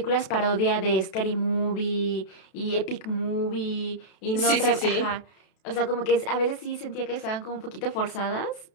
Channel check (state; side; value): late; right; 32 ms